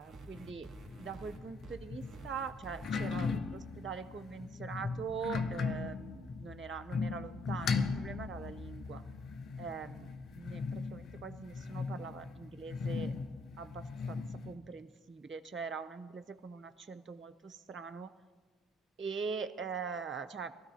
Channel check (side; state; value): both; normal; correlation 0.66